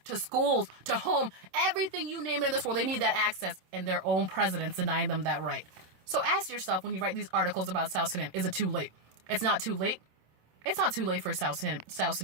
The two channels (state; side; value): late; left; 27 ms